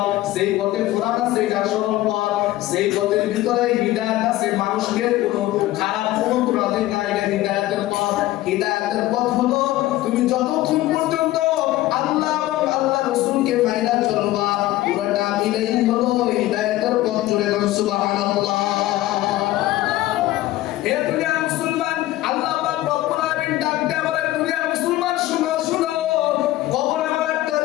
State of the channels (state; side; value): quieter; right; 16.2 dB